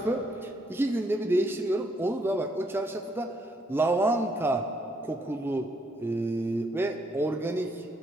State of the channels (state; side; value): normal; both; correlation 0.72